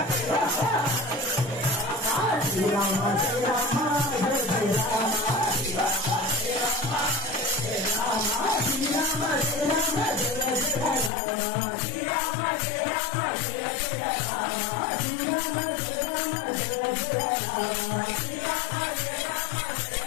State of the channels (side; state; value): right; drops out; at 11.1 s